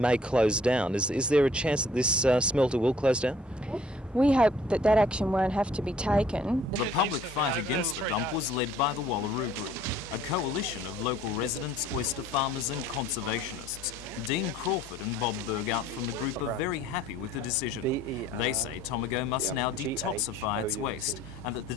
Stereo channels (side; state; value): both; normal; correlation 0.57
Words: close down. Is there a chance that this smelter will close down? We hope that that action won't have to be taken. The public fight against the dump was led by the Wallaroo Group, a coalition of local residents, oyster farmers and conservationists. Dean Crawford and Bob Bergout from the group are very happy with the decision. They say Tomago must now detoxify its waste and that the